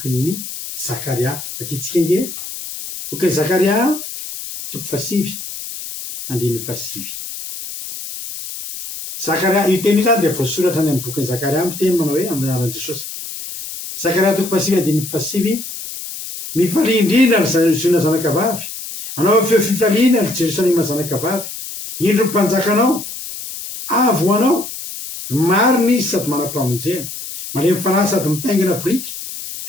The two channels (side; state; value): left; noise; hiss, 9 dB below the sound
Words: Zakaria vakitsika inge bokin'ny Zakaria toko 7 andiny 7. Zakaria io teny io zany de voasoratra any amin'ny bokin'ny Zakaria miteny manao hoe amin'ny anaran'i Jesosy. Zakaria toko 7 andiny 7 mifalindrina ry ziona zanakavavy anao feo fifaliana ry Jerosalema zanakavavy indro mpanjakanao avo anao marina izy sady manam-pamonjena malemy fanahy sady mitaingina boriky